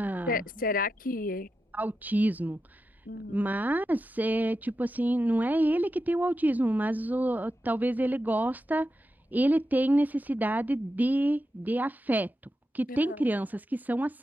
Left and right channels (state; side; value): normal; both; correlation 0.89